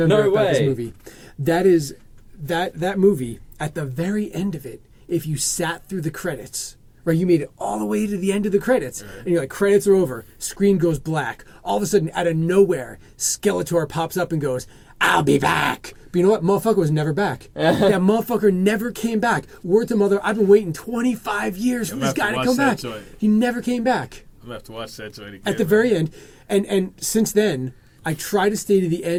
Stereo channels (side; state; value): both; identical; correlation 1.00